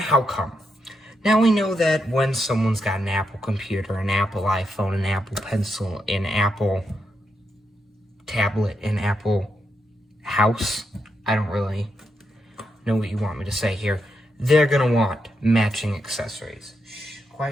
come? Now we know that when someone's got an Apple computer, an Apple iPhone, an Apple Pencil, an Apple tablet, an Apple house, I don't really know what you want me to say here, they're gonna want matching accessories. Shh,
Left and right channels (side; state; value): both; normal; correlation 0.83